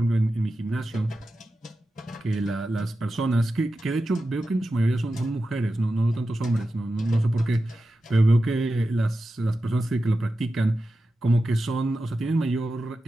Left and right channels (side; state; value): both; normal; correlation 0.92